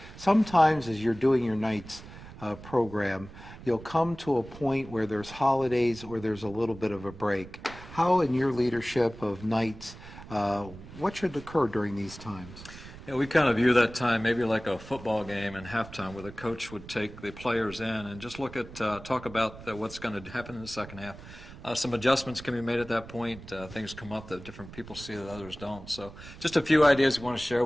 Sometimes as you're doing your nights program, you'll come to a point where there's holidays or there's a little bit of a break. How, in your leadership of nights, what should occur during these times? Yeah, we kind of view that time maybe like a football game in halftime, where the coach would take the players in and just look at, talk about what's going to happen in the second half. Some adjustments can be made at that point. Things come up that different people see that others don't. So just a few ideas we want to share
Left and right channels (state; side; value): noise; right; rumble, 16 dB below the sound